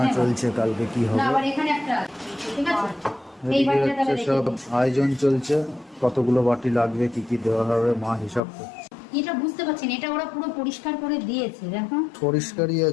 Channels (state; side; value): drops out; right; at 8.4 s